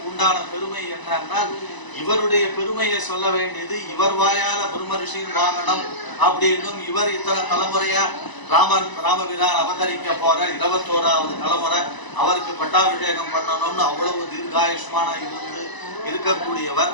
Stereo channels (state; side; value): late; right; 1.0 ms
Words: உண்டான பெருமை என்னன்னா இவருடைய பெருமையை சொல்ல வேண்டியது இவர் வாயால பிரம்ம ரிஷியின் வாங்கணும் அப்படின்னும் இவர் இத்தனை தலைமுறையா ராமபிரான் அவதரிக்க போற 21வது தலைமுறை அவருக்கு பட்டாபிஷேகம் பண்ணணும்னு அவ்வளவு தீர்காயுஷ்மான இருந்து இருக்கக்கூடியவர்.